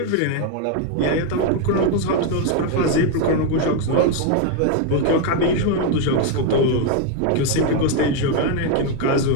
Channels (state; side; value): different; both; correlation 0.01